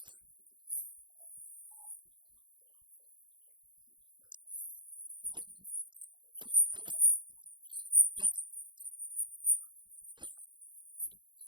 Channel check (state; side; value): late; left; 0.23 ms